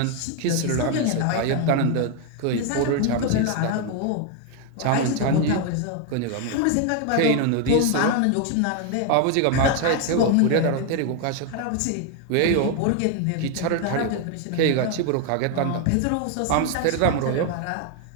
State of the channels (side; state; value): both; different; correlation 0.01